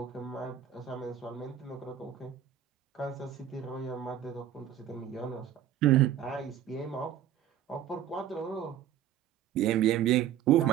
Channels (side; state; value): left; quieter; 10.2 dB